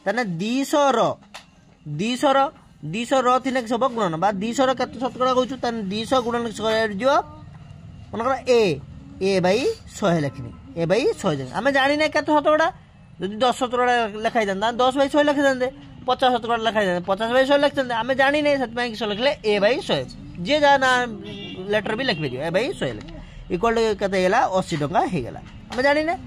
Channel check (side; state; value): both; identical; correlation 1.00